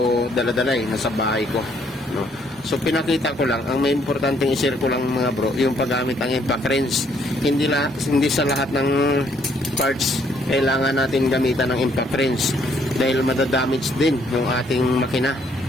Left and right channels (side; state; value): both; normal; correlation 0.67